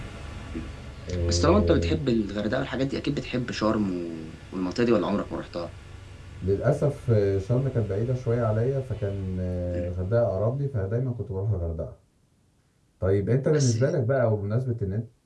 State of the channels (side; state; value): both; identical; correlation 1.00